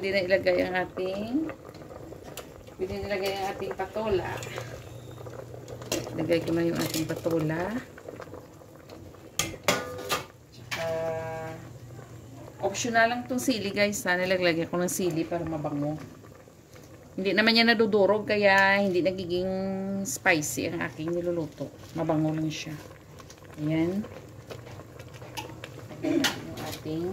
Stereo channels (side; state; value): both; identical; correlation 1.00